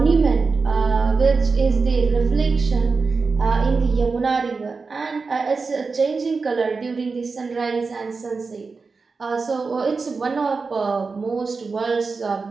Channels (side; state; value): left; quieter; 4.5 dB